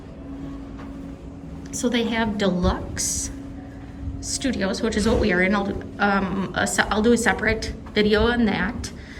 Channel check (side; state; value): both; identical; correlation 1.00